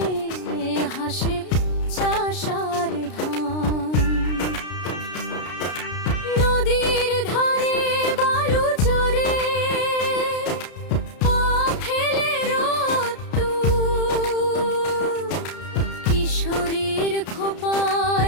হাসে চাষার ধান। নদীর ধারে বালু চরে পা ফেলে রোদ্দুর, কিশোরীর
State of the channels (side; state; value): right; late; 33 ms